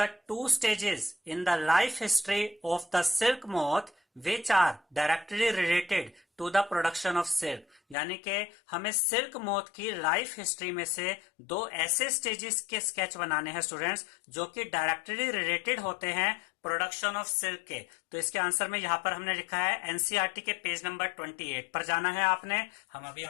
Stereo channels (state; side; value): drops out; right; at 8.0 s